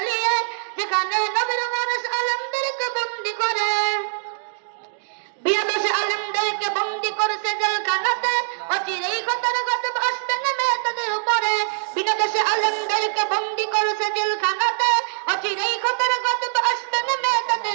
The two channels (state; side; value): silent; left; digital silence